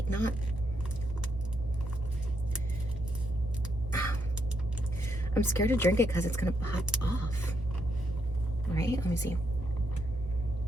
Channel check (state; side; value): normal; both; correlation 0.78